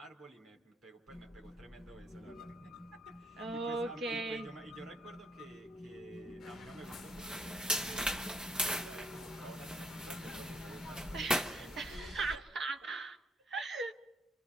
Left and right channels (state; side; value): normal; both; correlation 0.69